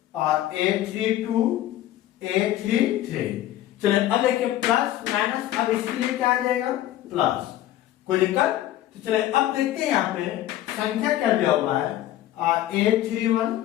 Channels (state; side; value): quieter; right; 13.6 dB